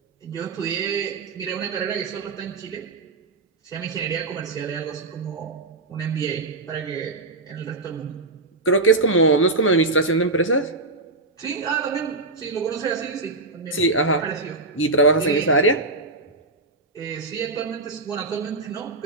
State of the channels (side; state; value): left; quieter; 3.2 dB